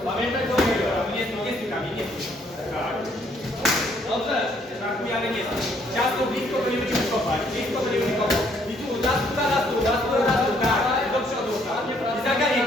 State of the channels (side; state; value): both; normal; correlation 0.66